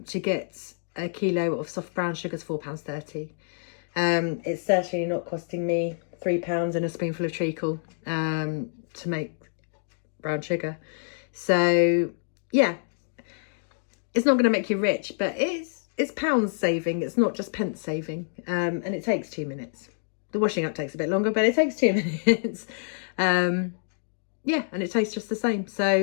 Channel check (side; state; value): right; silent; digital silence